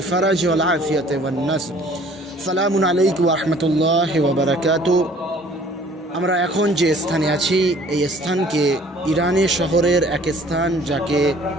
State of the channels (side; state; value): both; normal; correlation 0.54